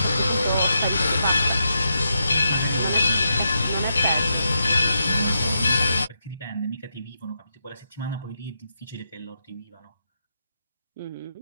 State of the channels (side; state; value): both; inverted; correlation -0.83